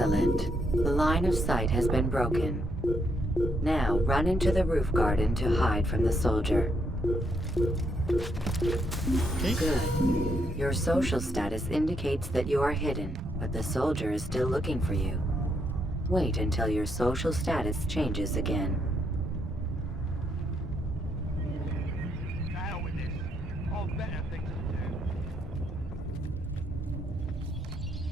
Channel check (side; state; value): both; normal; correlation 0.76